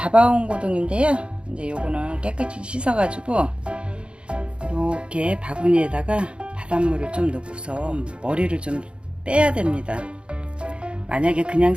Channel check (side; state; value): left; late; 0.056 ms